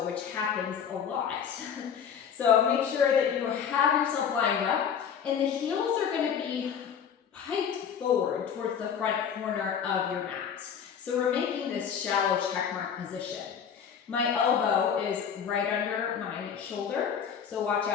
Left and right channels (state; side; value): quieter; right; 7.7 dB